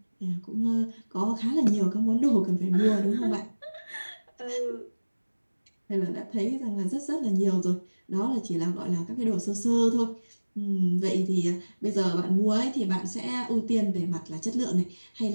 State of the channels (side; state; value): both; inverted; correlation -1.00